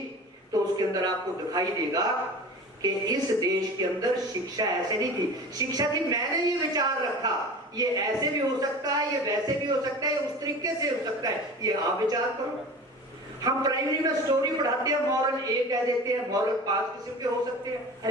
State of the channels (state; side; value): normal; both; correlation 0.36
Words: तो उसके अंदर आपको दिखाई देगा कि इस देश के अंदर शिक्षा ऐसे नहीं थी। शिक्षा थी मैंने ये विचार रखा, ये ऐसे भी हो सकता है, ये वैसे भी हो सकता है, ये उस तरीके से हो सकता है, ये आप विचार करो। हम प्राइमरी में स्टोरी पढ़ाते हैं, मॉरल ए कह देते हैं, मॉरल 5 किस्म के हो सकते हैं,